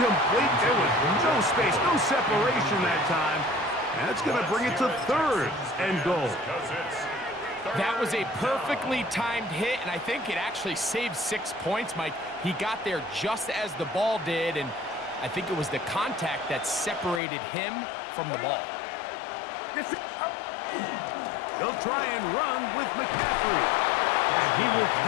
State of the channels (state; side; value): drops out; right; at 17.2 s